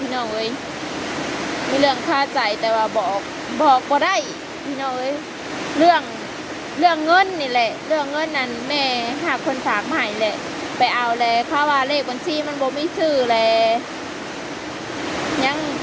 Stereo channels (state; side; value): identical; both; correlation 1.00